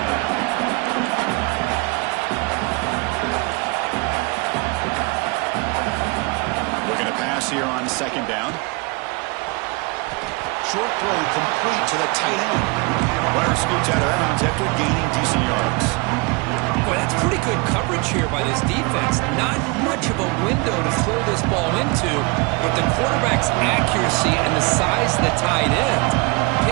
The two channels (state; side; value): quieter; left; 28.3 dB